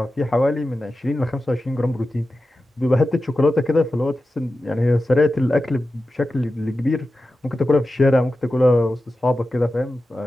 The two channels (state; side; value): normal; both; correlation 0.93